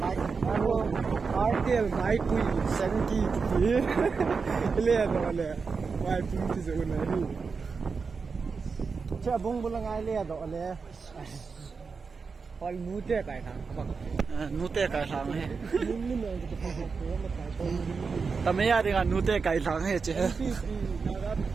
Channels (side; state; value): left; quieter; 5.0 dB